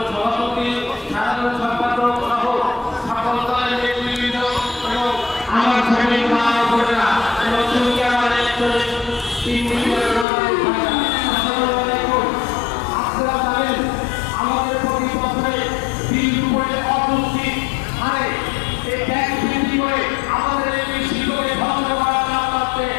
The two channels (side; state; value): right; drops out; at 10.2 s